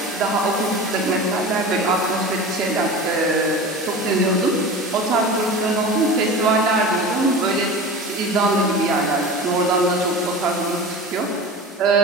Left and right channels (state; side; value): normal; both; correlation 0.33